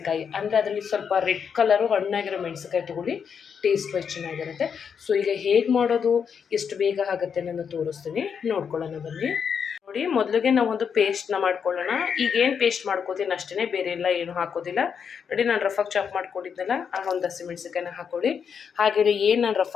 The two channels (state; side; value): quieter; right; 6.9 dB